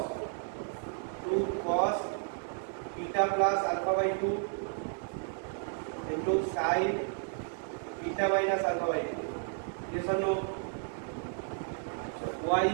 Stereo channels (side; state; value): left; silent; 56 dB below the other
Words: cos theta plus alpha by 2 এর into sine beta minus alpha by two. Yes or no? Y